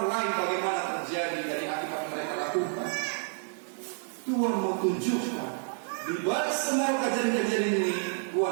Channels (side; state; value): left; silent; 58 dB below the other